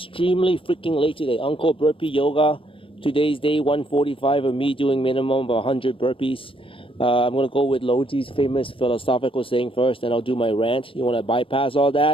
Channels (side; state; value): right; late; 0.26 ms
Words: freaking late today. Uncle Burpee Yoga. Today's day 145 of me doing minimum of 100 burpees. I'm going to go with Loji's famous philosophical saying first, and I'll do my rant. You want to bypass all